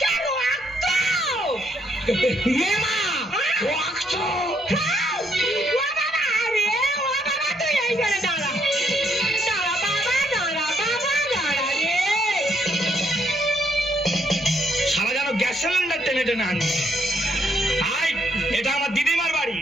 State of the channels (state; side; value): normal; both; correlation 0.71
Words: ইয়ে মা, রক্ত। সারা যেন গ্যাস সিলিন্ডার টেনে টেনে আনছে। আই, এটা আমার দিদিমার বাড়ি,